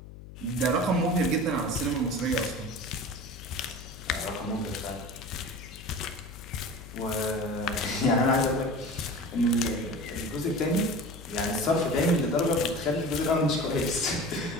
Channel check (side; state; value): left; noise; hum, 15 dB below the sound